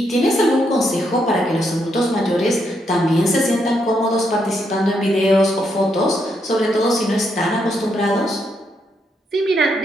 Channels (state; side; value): normal; both; correlation 0.78